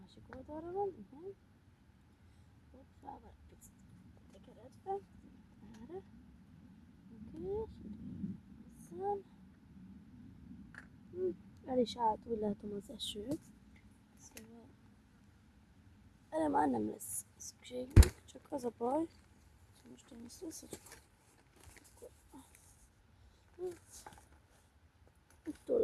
oldalra van, igen. Hoppá, vagy picit tekeredve. Erre. Oké, és itt hozzám. El is állt, úgy látom, az eső. Szóval erre már nem lesz szükségünk, csak az a baj, hogy most én ezt összecsukom. Uttól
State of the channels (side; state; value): both; identical; correlation 1.00